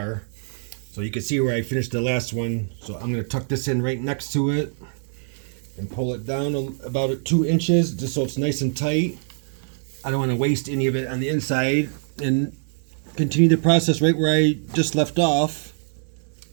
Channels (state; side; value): silent; left; 62 dB below the other